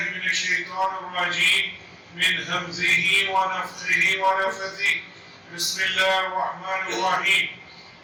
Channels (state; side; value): identical; both; correlation 1.00